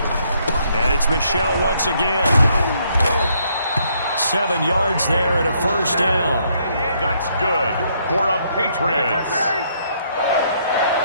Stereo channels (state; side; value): inverted; both; correlation -0.71